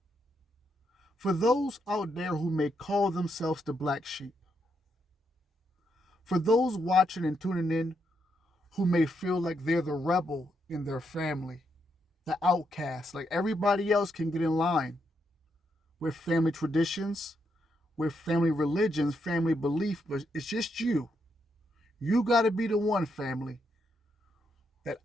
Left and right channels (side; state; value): both; normal; correlation 0.80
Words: For those out there who may call themselves the black sheep, for those watching and tuning in who may feel like they're the rebel in their family, the outcast, like everybody else can get in line with family traditions, with family religions, family belief, but it's just you. You got to be the one, family, that